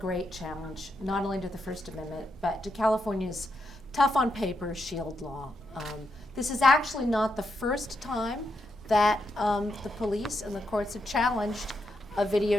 challenge, not only to the First Amendment, but to California's tough on paper SHIELD law. This is actually not the first time that the police and the courts have challenged a video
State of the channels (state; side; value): normal; both; correlation 0.82